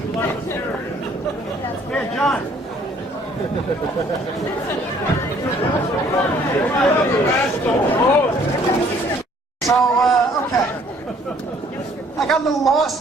Here, John. So, okay. I got a little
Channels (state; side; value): normal; both; correlation 0.60